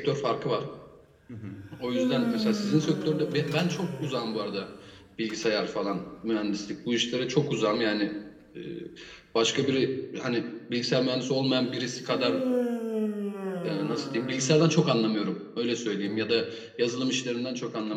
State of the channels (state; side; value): identical; both; correlation 1.00